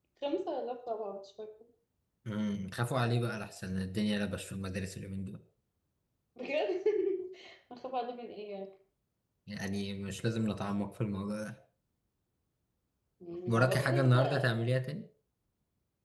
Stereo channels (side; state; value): both; identical; correlation 1.00